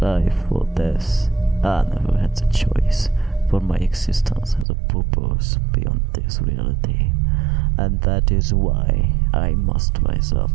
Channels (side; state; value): left; drops out; at 4.7 s